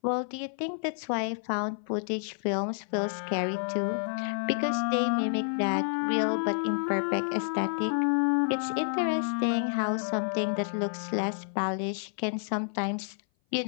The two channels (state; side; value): silent; right; 57 dB below the other